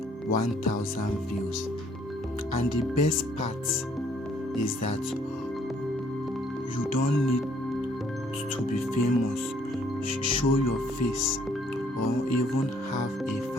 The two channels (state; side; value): normal; both; correlation 0.63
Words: 1000 views. And the best part is that you don't need to be famous, show your face, or even have a